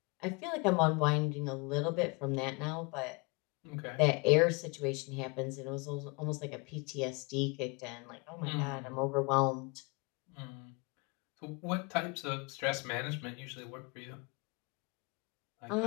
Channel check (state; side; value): quieter; right; 29.0 dB